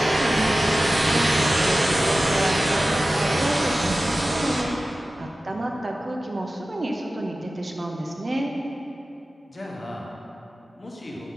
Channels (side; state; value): both; normal; correlation 0.96